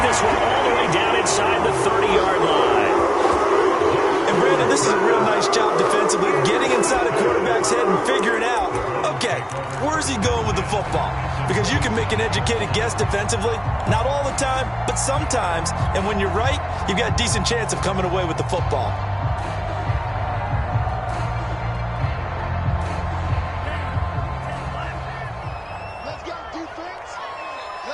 this one all the way down inside the 30-yard line. And Brandon, this is a real nice job defensively, getting inside a quarterback's head and figuring out, okay, where's he going with the football? Because you can make an educated guess defensively, not all the time, but sometimes. And when you're right, you've got a decent chance of coming away with the football. Let's go defense.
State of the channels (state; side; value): identical; both; correlation 1.00